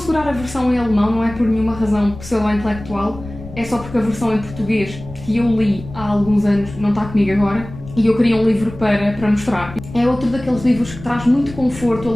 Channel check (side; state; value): left; noise; rumble, 14 dB below the sound